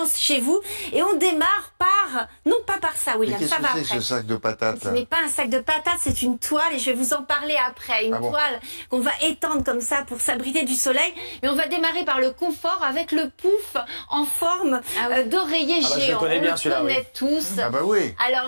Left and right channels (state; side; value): inverted; both; correlation -1.00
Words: chez vous. Et on démarre par, non pas par ça, Mais William, qu'est-ce ça que va c'est après. ce sac de patates Ce là? n'est pas un sac de patates, c'est une toile et je vais vous en parler après. Une Ah bon? toile qu'on va étendre comme ça pour s'abriter du soleil. Mais on va démarrer par le confort avec le pouf en forme d'oreiller Ah bah, je le géant. connais bien, on le celui-là, connaît oui. tous. Ah bah oui.